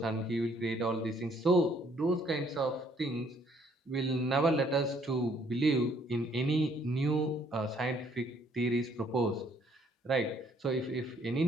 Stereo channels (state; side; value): normal; both; correlation 0.64